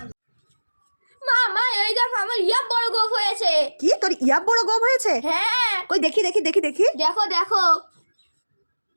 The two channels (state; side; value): inverted; both; correlation -1.00